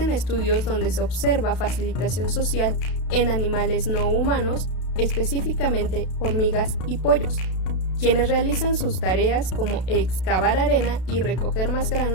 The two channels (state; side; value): late; right; 32 ms